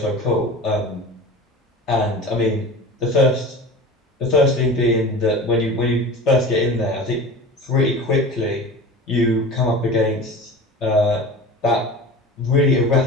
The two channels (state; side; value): normal; both; correlation 0.35